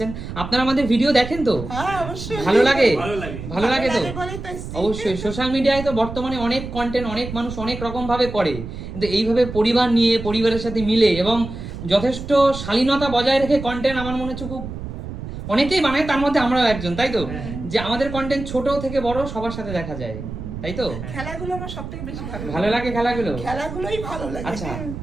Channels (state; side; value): noise; right; rumble, 9 dB below the sound